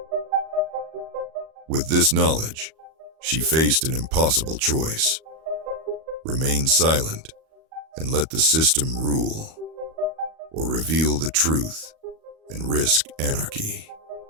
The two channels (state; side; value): late; left; 38 ms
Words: With this knowledge, she faced an impossible choice: remain silent and let the system rule, or reveal the truth and risk anarchy.